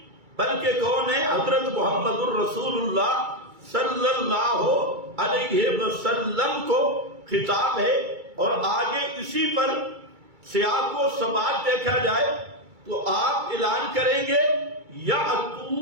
بلکہ کون ہے؟ حضرت محمد الرسول اللہ صلی اللہ علیہ وسلم کو خطاب ہے۔ اور آگے اسی پر سیاق و سباق دیکھا جائے تو آپ اعلان کریں گے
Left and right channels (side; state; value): left; late; 2.3 ms